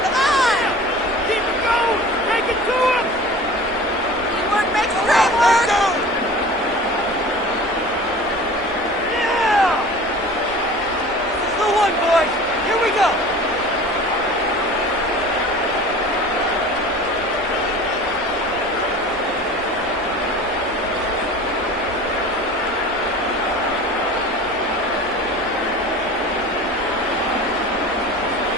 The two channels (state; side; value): normal; both; correlation 0.40